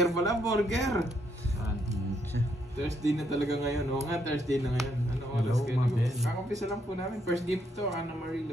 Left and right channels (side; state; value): both; normal; correlation 0.74